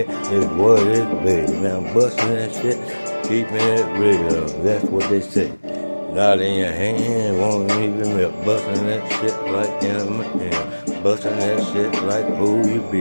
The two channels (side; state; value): both; inverted; correlation -1.00